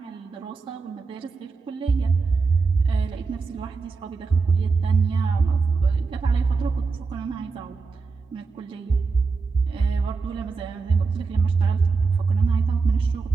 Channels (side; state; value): left; quieter; 4.5 dB